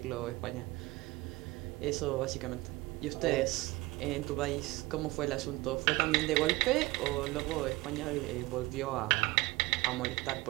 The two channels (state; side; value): quieter; left; 20.6 dB